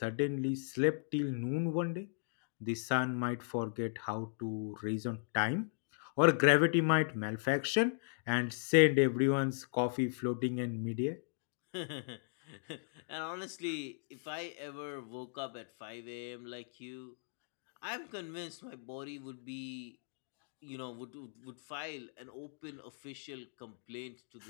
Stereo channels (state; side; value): silent; right; digital silence